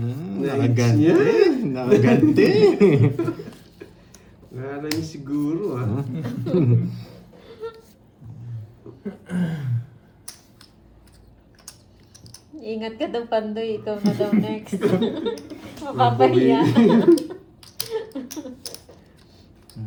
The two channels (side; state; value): both; identical; correlation 1.00